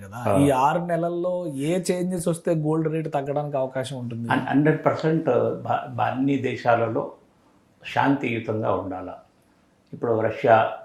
కదా, ఈ 6 నెలల్లో ఏ చేంజెస్ వస్తే గోల్డ్ రేట్ తగ్గడానికి అవకాశం ఉంటుంది? 100% అన్ని దేశాలలో శాంతియుతంగా ఉండాలి. ఇప్పుడు Russia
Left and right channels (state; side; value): identical; both; correlation 1.00